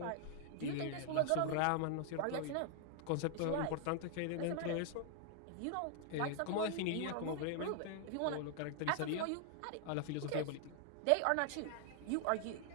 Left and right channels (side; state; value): both; different; correlation 0.00